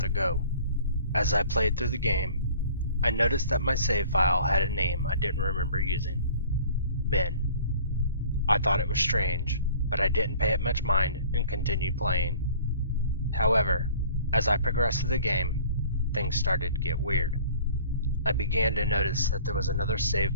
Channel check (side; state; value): both; inverted; correlation -0.48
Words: go. As I played through the game, I noticed that my save file had a name I didn't remember using: Ben. I thought it was strange, but I didn't pay it much mind and continued playing. However, as I progressed through the game, things started to get weird. I began to notice that there was another save